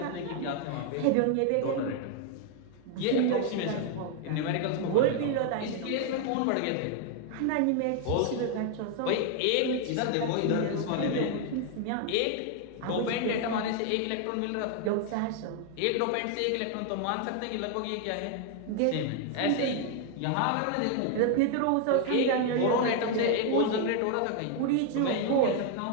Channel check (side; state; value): both; different; correlation 0.00